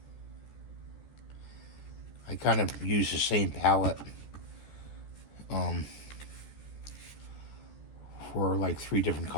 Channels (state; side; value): late; right; 14 ms